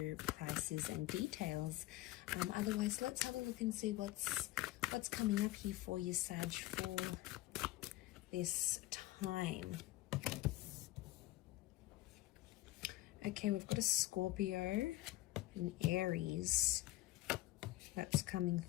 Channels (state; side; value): quieter; right; 17.4 dB